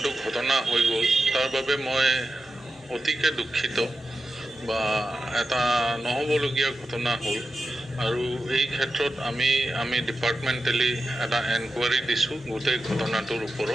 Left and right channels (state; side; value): normal; both; correlation 0.91